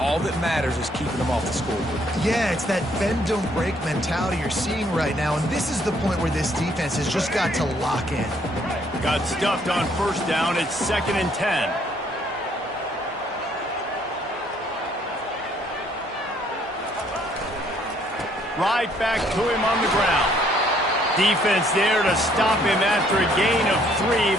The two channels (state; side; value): normal; both; correlation 0.65